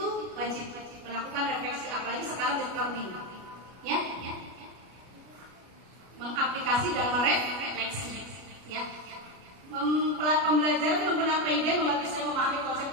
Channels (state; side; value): late; left; 33 ms